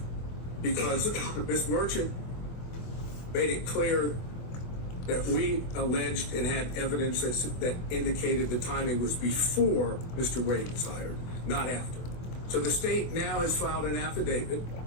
because Ms. Merchant made it clear that we alleged and had evidence that indicated the timing was before Mr. Wade was hired, not after. So the state now has filed an affidavit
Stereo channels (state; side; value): late; right; 24 ms